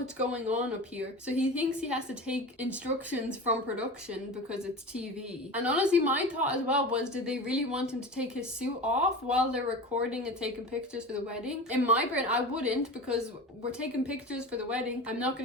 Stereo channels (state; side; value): normal; both; correlation 0.31